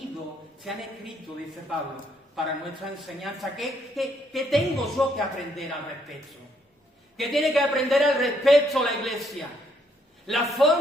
se han escrito, dice Pablo, para nuestra enseñanza. ¿Qué tengo yo que aprender al respecto? ¿Qué tiene que aprender al respecto la iglesia? La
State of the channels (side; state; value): both; normal; correlation 0.71